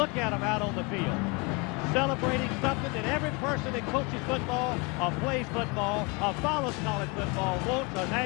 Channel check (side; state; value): right; quieter; 29.6 dB